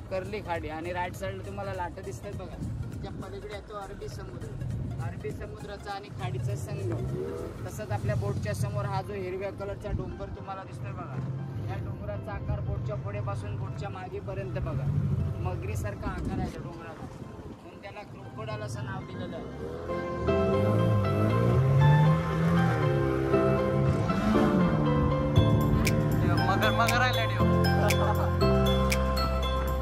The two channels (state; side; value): identical; both; correlation 1.00